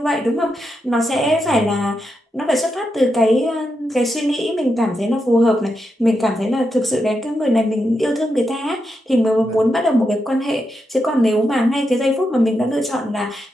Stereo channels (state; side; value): normal; both; correlation 0.85